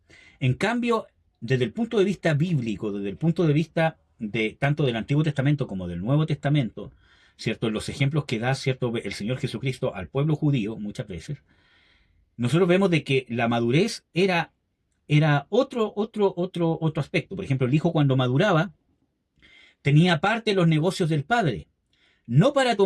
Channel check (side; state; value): both; identical; correlation 1.00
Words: En cambio, desde el punto de vista bíblico, desde el punto de vista de tanto del Antiguo Testamento como del Nuevo Testamento, ¿cierto? En los ejemplos que da, ¿cierto?, el Señor Jesucristo al pueblo judío muchas veces, nosotros vemos de que la madurez era otro aspecto. Por ejemplo, el hijo cuando maduraba tenía parte de los negocios del padre, no para